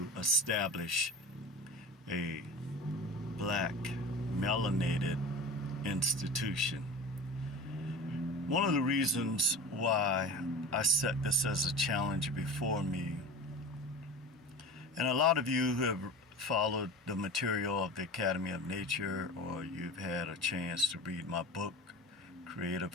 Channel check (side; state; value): both; normal; correlation 0.33